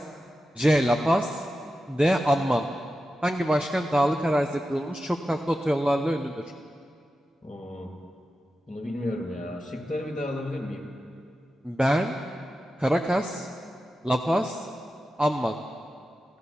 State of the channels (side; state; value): both; normal; correlation 0.91